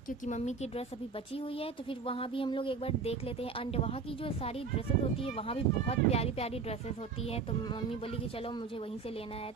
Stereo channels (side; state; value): left; quieter; 5.1 dB